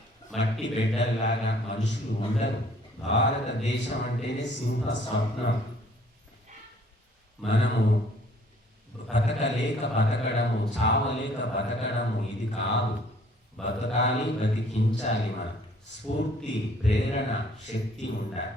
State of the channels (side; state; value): both; normal; correlation 0.58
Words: మట్టి బిడ్డల్లాగా మనుషులు ఉండరు. భారతదేశం అంటేనే సింహ స్వప్నం. మనము బతకలేక బతకడము, చావలేక బతకడము ఇది కాదు. బతకాలి, బతికించాలి. మనం స్ఫూర్తి, ప్రేరణ, శక్తి ఉండాలి.